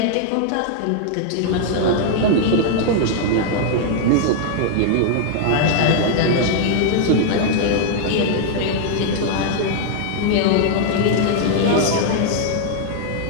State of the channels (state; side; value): different; both; correlation -0.01